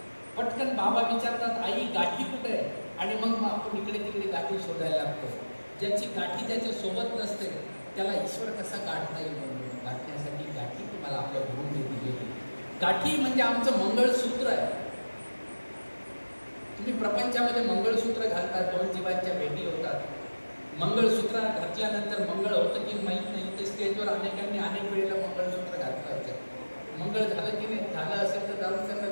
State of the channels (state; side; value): inverted; both; correlation -1.00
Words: पटकन बाबा विचारतात, आई गाठी कुठे आहे? आणि मग आपण इकडे तिकडे गाठी शोधायला लागतो. ज्याची गाठी ज्याच्या सोबत नसते त्याला ईश्वर कसा गाठता येईल? म्हणून गाठण्यासाठी गाठी तुम्हाला आपल्या गुरुने दिलेली. गाठी म्हणजे आमचं मंगळसूत्र आहे. तुम्ही प्रपंचामध्ये मंगळसूत्र घालता, 2 जीवांच्या भेटी होतात. मंगळसूत्र घातल्यानंतर मंगळ होतं की माहीत नाही, ते स्टेजवर अनेकांनी अनेक वेळेला मंगळसूत्र घातलं. मंगळ झालं की नाही, झालं असेल तर जाऊन त्यांना